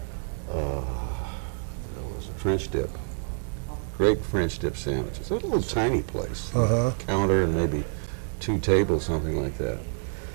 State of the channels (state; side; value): silent; left; 60 dB below the other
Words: was it French dip? Great French dip sandwiches. It was a little tiny place. Counter and maybe 2 tables, something like that.